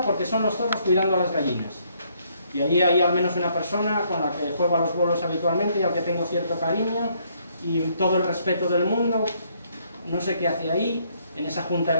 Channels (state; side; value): inverted; both; correlation -0.69